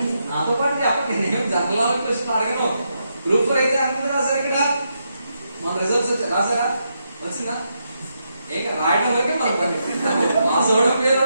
నాతో పాటు చెప్పండి, నేను జనరల్ క్వశ్చన్ అడగను. గ్రూప్ 4 అయితే అందరూ రాశారు. ఇక్కడ మన రిజల్ట్స్ రాసారా? వచ్చిందా? ఏక రాయడం వరకే మన పని. మా సోడం పేరు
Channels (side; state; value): both; inverted; correlation -0.82